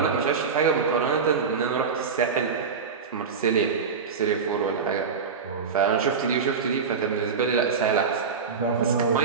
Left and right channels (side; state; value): left; quieter; 5.6 dB